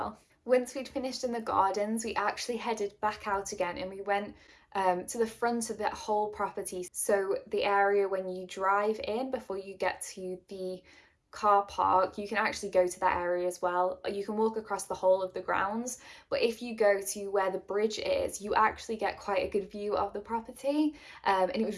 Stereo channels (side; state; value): both; identical; correlation 1.00